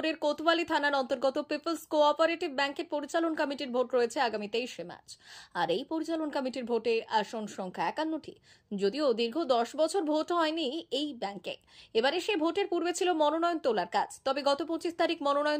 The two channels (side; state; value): both; identical; correlation 1.00